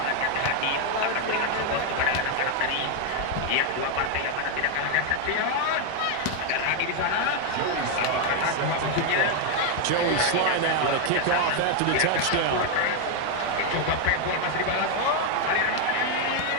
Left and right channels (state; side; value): different; both; correlation 0.01